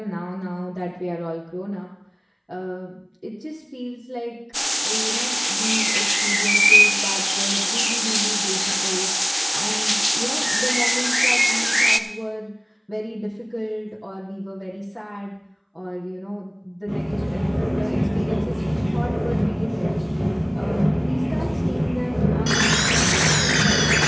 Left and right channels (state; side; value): identical; both; correlation 1.00